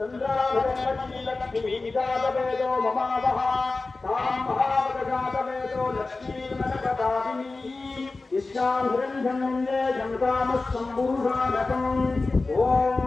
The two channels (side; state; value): right; quieter; 3.6 dB